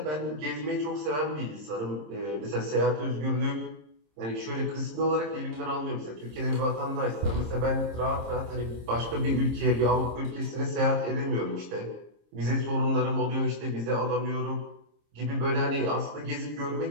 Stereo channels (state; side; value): late; left; 26 ms